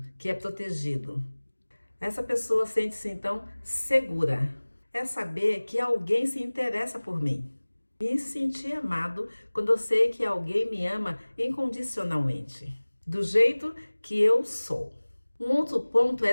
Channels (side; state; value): both; inverted; correlation -1.00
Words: que é protegido. Essa pessoa sente-se então segura. É saber que alguém se interessa por mim. Me sentir amado quando eu sei que alguém me ama incondicionalmente, do jeito que eu sou. Um outro ponto